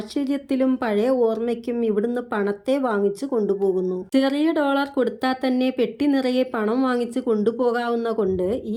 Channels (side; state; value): both; identical; correlation 1.00